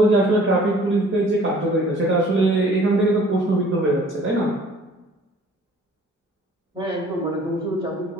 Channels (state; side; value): normal; both; correlation 0.53